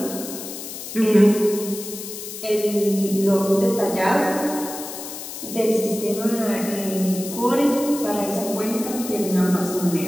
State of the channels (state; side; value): noise; left; hiss, 10 dB below the sound